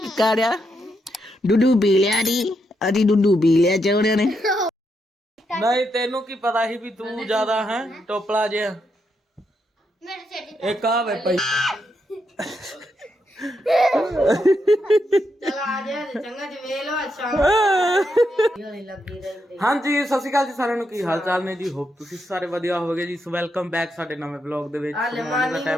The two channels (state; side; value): normal; both; correlation 0.81